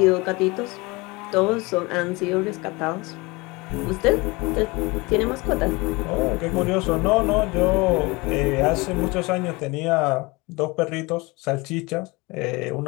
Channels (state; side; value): quieter; right; 24.7 dB